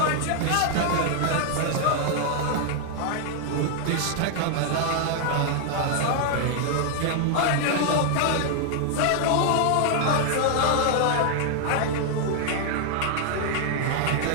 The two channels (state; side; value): different; both; correlation -0.01